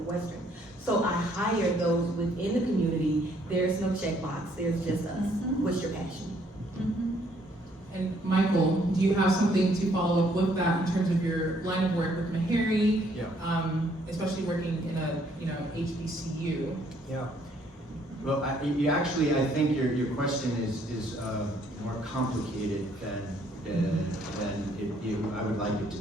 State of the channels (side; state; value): both; normal; correlation 0.66